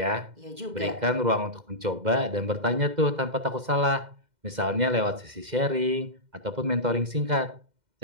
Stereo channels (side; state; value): left; late; 2.1 ms